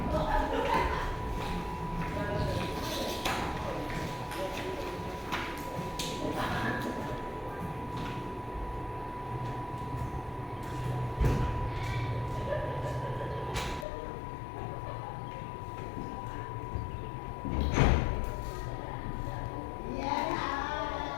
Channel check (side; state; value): right; drops out; at 13.9 s